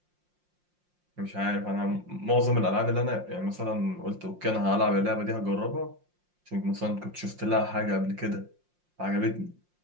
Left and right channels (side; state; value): left; late; 5.6 ms